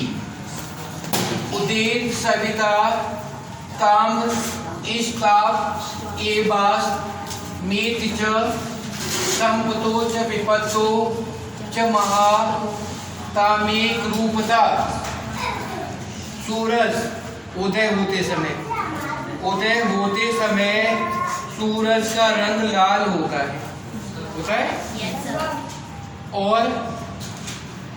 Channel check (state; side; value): identical; both; correlation 1.00